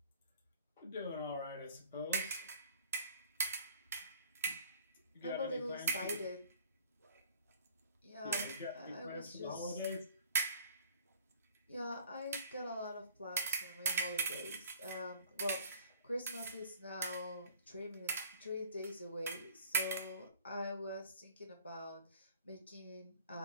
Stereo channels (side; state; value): both; inverted; correlation -0.53